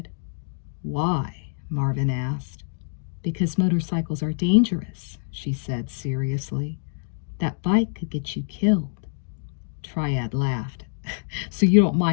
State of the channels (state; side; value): silent; right; digital silence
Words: "Why?" Marvin asked. "Because motorcycles are dangerous," she said seriously. "That bike could get you killed." Triad laughed. "So you don't